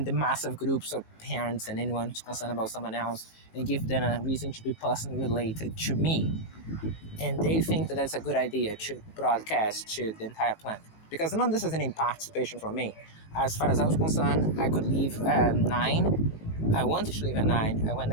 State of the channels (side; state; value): right; late; 19 ms